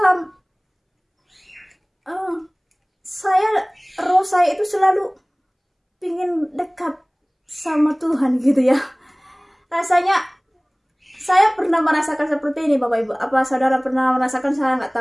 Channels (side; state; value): both; identical; correlation 1.00